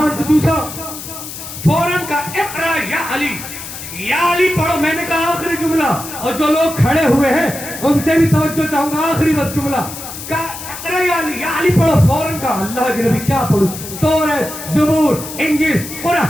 کو چوسا، فوراً کا اقرا یا علی، یا علی پڑھو۔ میں نے کہا آخری جملہ، اور جو لوگ کھڑے ہوئے ہیں ان سے بھی توجہ چاہوں گا، آخری بس جملہ کہا اقرا یا علی پڑھو۔ فوراً کا اللہ کے نبی کیا پڑھوں؟ توریت، زبور، انجیل،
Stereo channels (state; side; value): noise; left; hiss, 11 dB below the sound